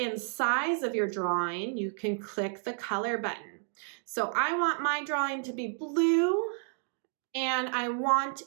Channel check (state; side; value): silent; left; 57 dB below the other